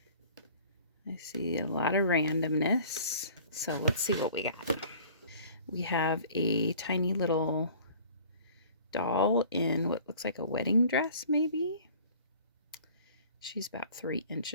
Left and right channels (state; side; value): inverted; both; correlation -0.49